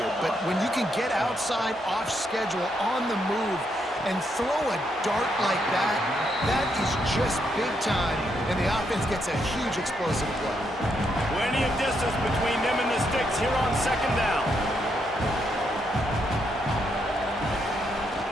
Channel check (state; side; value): normal; both; correlation 0.78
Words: but when you can get outside, off schedule, on the move, and throw a dart like that, that is just big time, and the offense gets a huge explosive play. Plenty of distance between them and the sticks here on second down.